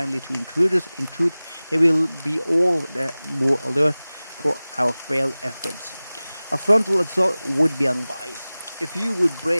to intruders. In truth, they will be all the more alert for our failed efforts. A frontal assault would be unwise. If you would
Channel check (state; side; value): inverted; both; correlation -0.98